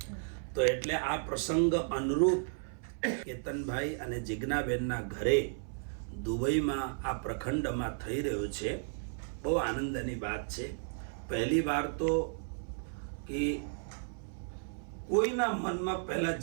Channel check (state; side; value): silent; left; 55 dB below the other